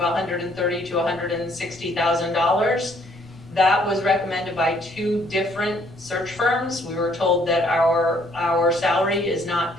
$130,000 to $160,000. That was recommended by 2 different search firms. We were told that our salary is not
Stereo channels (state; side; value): normal; both; correlation 0.65